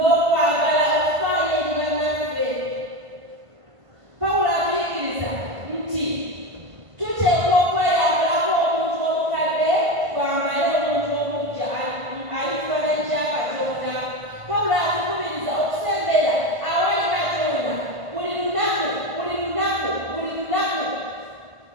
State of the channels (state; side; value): late; left; 1.5 ms